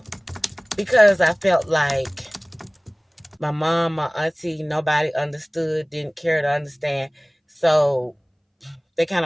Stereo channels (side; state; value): both; identical; correlation 1.00